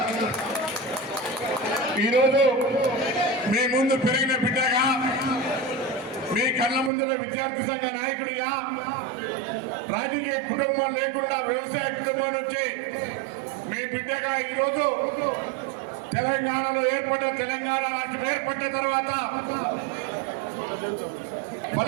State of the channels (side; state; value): left; drops out; at 6.9 s